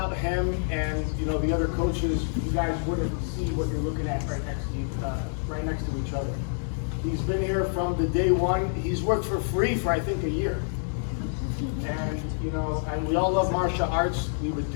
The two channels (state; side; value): silent; right; digital silence